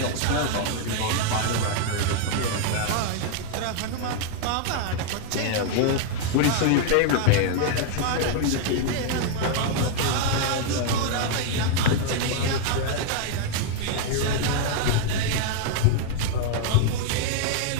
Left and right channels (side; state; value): both; different; correlation 0.00